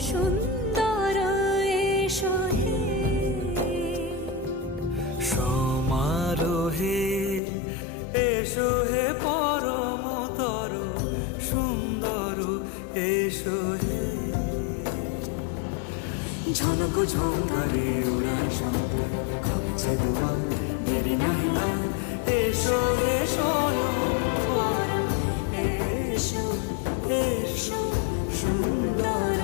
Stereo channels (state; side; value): drops out; right; at 7.4 s